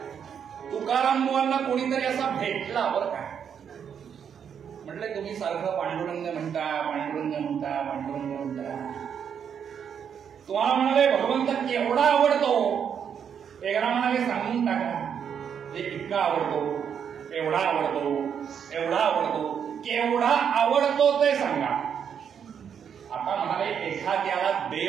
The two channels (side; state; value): left; quieter; 7.8 dB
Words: तुकाराम बुवांना कोणीतरी असा भेटला बरं का. म्हटलं तुम्ही सारखं पांडुरंग म्हणता पांडुरंग म्हणता पांडुरंग म्हणता. तुम्हाला म्हणाले भगवंत केवढा आवडतो. एकदा म्हणाले सांगून टाका. इतका आवडतो, एवढा आवडतो, एवढा आवडतो, केवढा आवडतो ते सांगा. आता म्हणाले एखाद्याला